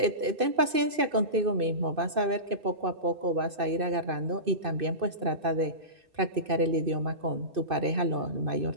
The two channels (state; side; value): late; left; 2.5 ms